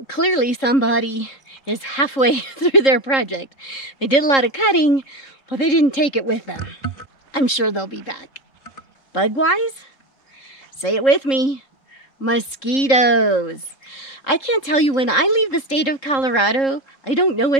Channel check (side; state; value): right; late; 3.7 ms